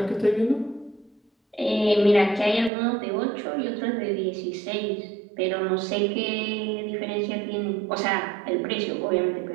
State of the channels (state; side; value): drops out; left; at 2.7 s